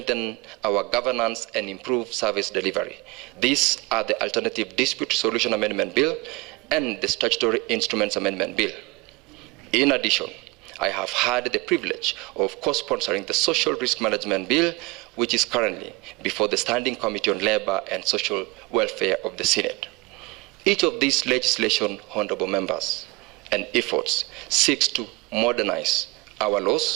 our governance and improve service delivery. These are the Alternative Dispute Resolution Amendment Bill and the Statutory Instruments Amendment Bill. In addition, I have had the privilege of co-sponsoring the Social Risk Management Bill, which is currently before the Standing Committee on Labor and Social Welfare of the Senate. Each of these legislation, honorable members, and efforts seeks to modernize our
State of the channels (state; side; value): quieter; left; 24.5 dB